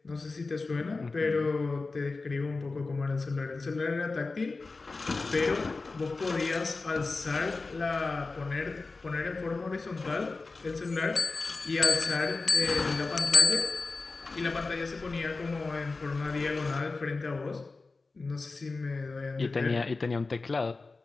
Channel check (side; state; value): right; quieter; 3.8 dB